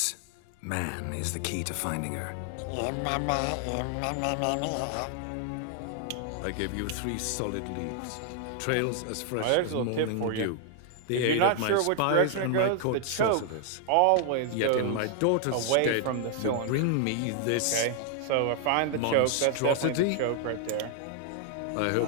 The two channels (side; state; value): both; different; correlation 0.00